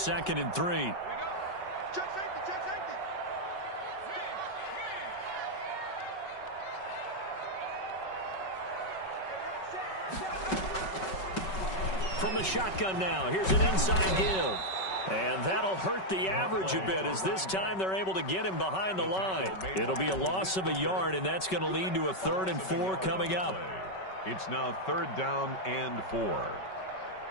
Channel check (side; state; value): right; late; 5.3 ms